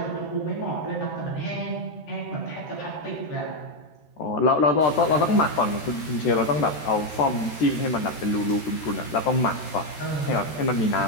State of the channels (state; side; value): late; right; 13 ms